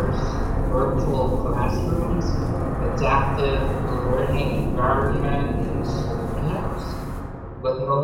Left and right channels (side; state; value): both; identical; correlation 1.00